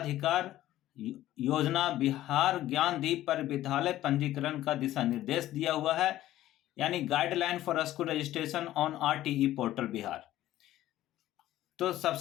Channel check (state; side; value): quieter; right; 14.2 dB